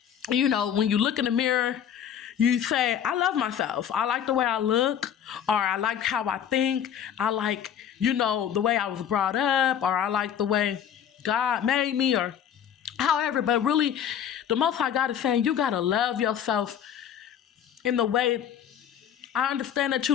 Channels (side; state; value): right; quieter; 9.2 dB